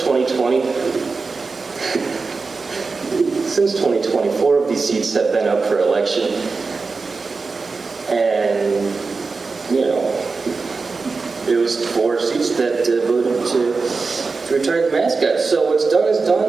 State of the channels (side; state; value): left; quieter; 4.3 dB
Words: 4 of these seats have been up for election. And, you know, it was 4 seats that voted to retire the mascot. So what's done is